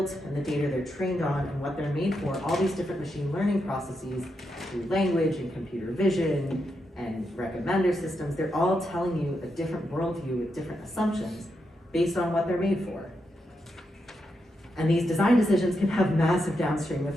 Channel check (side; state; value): both; normal; correlation 0.84